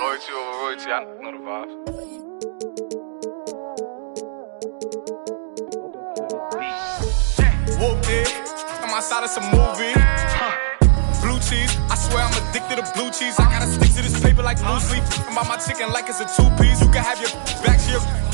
over royalty, I know the vibes. Whooped it, I'm outside of some movie. Blue cheese, I swear I'm addicted to blue cheese. I gotta stick to this paper like blue sleep. I'm about my chicken like it's a two-piece. You can have your back here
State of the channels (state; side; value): silent; left; digital silence